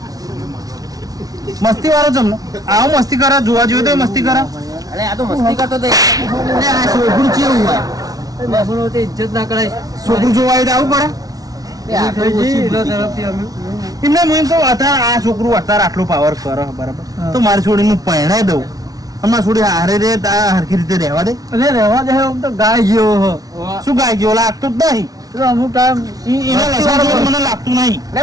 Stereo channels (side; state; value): left; late; 0.18 ms